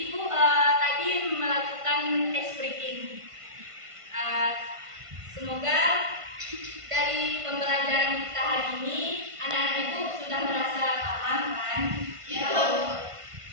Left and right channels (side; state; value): left; late; 1.5 ms